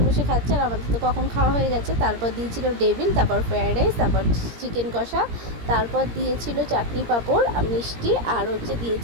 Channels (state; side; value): late; left; 17 ms